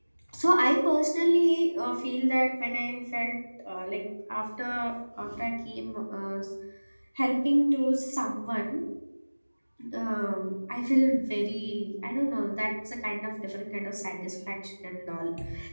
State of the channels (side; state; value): both; inverted; correlation -1.00